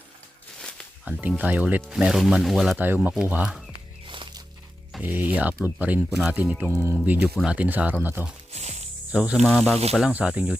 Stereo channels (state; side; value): normal; both; correlation 0.91